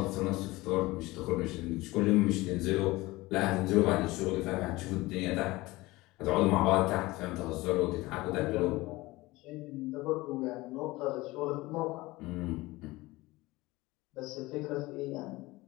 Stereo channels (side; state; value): right; quieter; 20.3 dB